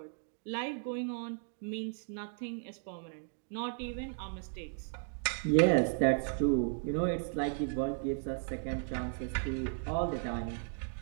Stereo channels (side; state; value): left; silent; 54 dB below the other